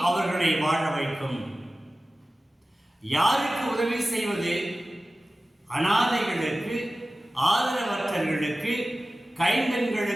அவர்களை வாழ வைக்கும். யாருக்கு உதவி செய்வது? அனாதைகளுக்கு, ஆதரவற்றவர்களுக்கு,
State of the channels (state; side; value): normal; both; correlation 0.96